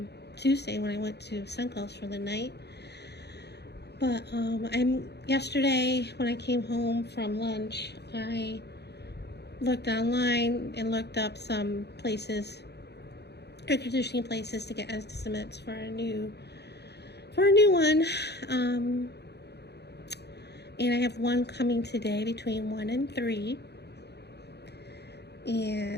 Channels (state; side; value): late; right; 0.48 ms